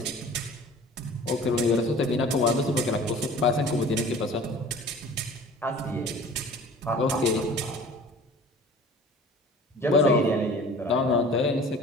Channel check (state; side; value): normal; both; correlation 0.44